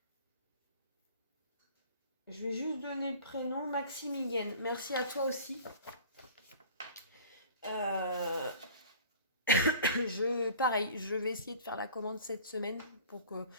Je vais juste donner le prénom, Maximilienne. Merci à toi aussi. Pareil, je vais essayer de faire la commande cette semaine pour que...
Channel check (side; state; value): both; inverted; correlation -0.44